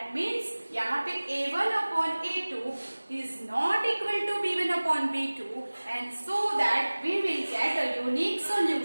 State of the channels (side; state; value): both; inverted; correlation -1.00